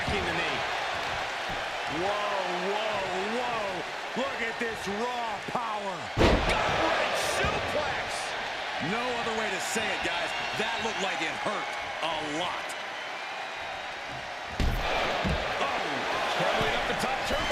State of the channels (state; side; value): identical; both; correlation 1.00